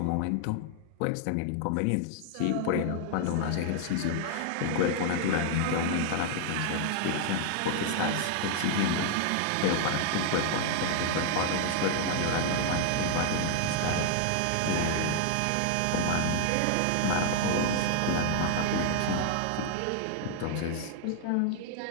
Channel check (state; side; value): different; both; correlation 0.00